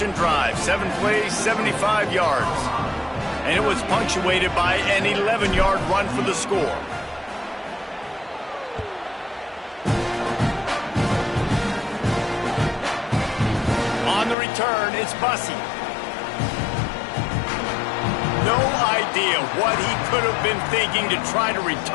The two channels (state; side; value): drops out; right; at 14.4 s